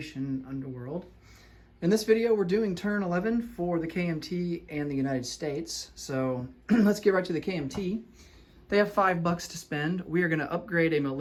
Underworld. In this video we're doing turn 11 for the KMT and the United States. So let's get right to the KMT. They have $5 to spend. We are going to upgrade a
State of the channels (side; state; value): both; identical; correlation 1.00